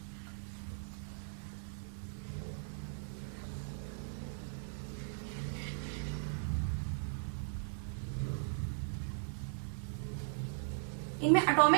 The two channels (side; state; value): left; silent; digital silence